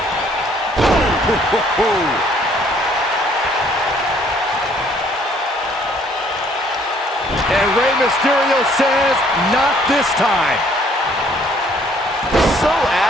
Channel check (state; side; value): normal; both; correlation 0.62